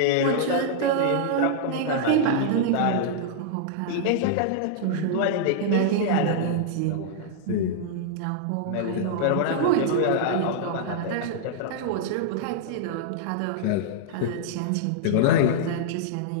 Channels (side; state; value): both; different; correlation -0.01